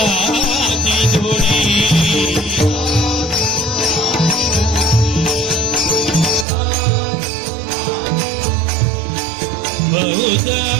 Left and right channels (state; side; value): drops out; left; at 6.5 s